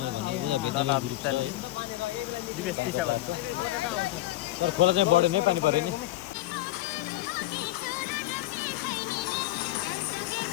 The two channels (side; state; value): right; quieter; 16.6 dB